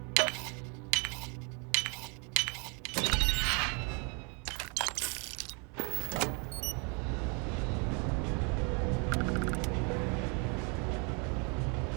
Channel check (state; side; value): quieter; left; 34.7 dB